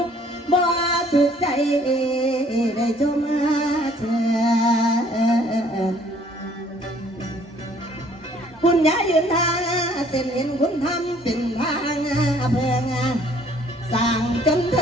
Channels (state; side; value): normal; both; correlation 0.59